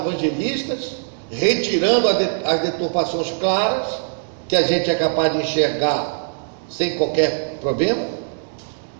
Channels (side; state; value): left; silent; digital silence